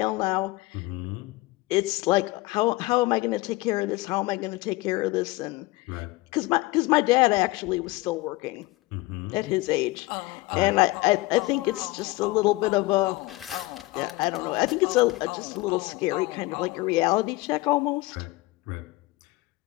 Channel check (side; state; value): right; quieter; 20.7 dB